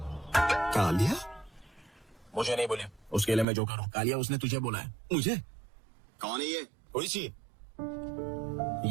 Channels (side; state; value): left; drops out; at 3.5 s